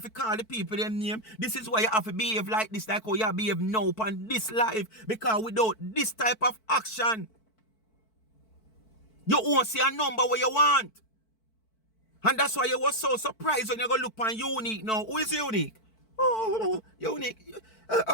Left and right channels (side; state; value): right; late; 4.5 ms